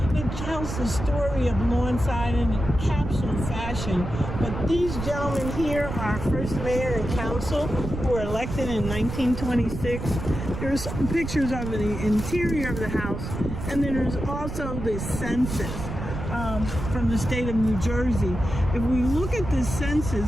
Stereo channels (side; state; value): right; noise; rumble, 6 dB below the sound